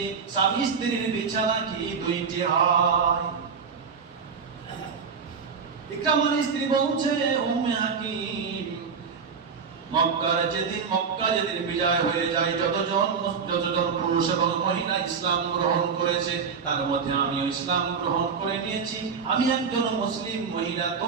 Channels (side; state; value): left; quieter; 5.8 dB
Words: স্বামী স্ত্রীর বিছানা কি দুইটি হয়? ইকরামার স্ত্রী বলছে, উম্মে হাকিম, মক্কা যেদিন বিজয় হয়ে যায়, যতজন পুরুষ এবং মহিলা ইসলাম গ্রহণ করেছে তার মধ্যে আমিও ইসলাম গ্রহণ করে নিয়েছি। আমি একজন মুসলিম মহিলা,